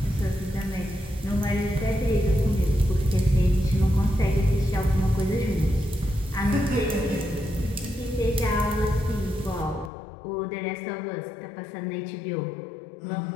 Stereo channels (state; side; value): drops out; right; at 9.9 s